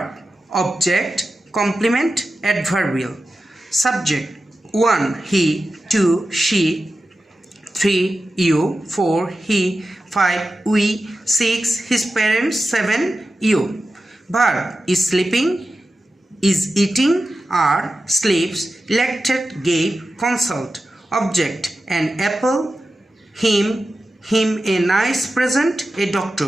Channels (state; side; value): normal; both; correlation 0.93